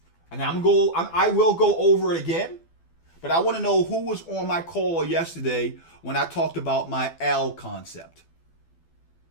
And I will go over it again, but I want to know who was on my call yesterday when I talked about my L concept.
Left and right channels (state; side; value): late; right; 12 ms